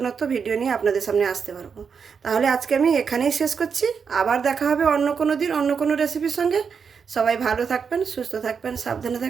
ভিডিও নিয়ে আপনাদের সামনে আসতে পারবো। তাহলে আজকে আমি এখানেই শেষ করছি। আবার দেখা হবে অন্য কোনো দিন অন্য কোনো রেসিপির সঙ্গে। সবাই ভালো থাকবেন, সুস্থ থাকবেন, সাবধানে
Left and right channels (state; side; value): quieter; left; 6.2 dB